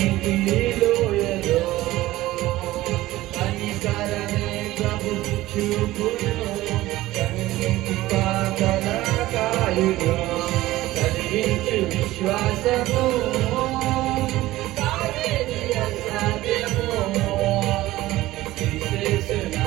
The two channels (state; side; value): quieter; left; 16.9 dB